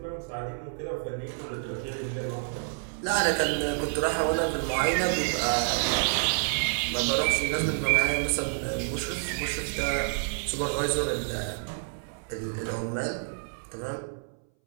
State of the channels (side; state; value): left; silent; 59 dB below the other